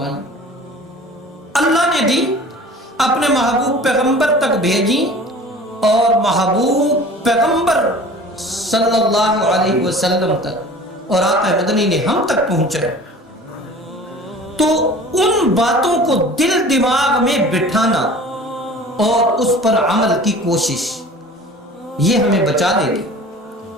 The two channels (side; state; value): both; normal; correlation 0.43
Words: اللہ نے دی، اپنے محبوب پیغمبر تک بھیجی، اور محبوب پیغمبر صلی اللہ علیہ وسلم تک اور آقا مدنی نے ہم تک پہنچائے۔ تو ان باتوں کو دل دماغ میں بٹھانا اور اس پر عمل کی کوشش یہ ہمیں بچا لے گی،